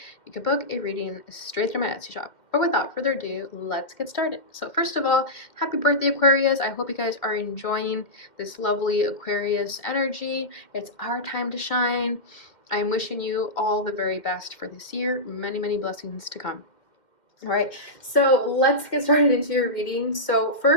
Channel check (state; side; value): late; right; 2.1 ms